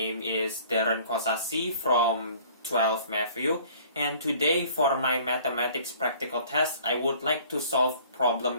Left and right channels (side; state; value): both; inverted; correlation -0.52